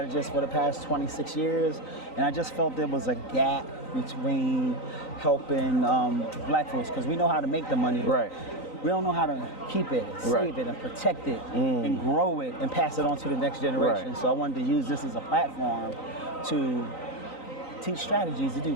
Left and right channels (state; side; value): late; right; 3.9 ms